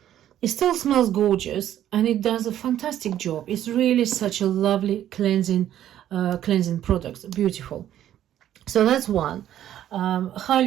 still smells gorgeous, and it does a fantastic job. It's really such a lovely cleansing product. Beautiful. So that's one.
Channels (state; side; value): quieter; left; 11.6 dB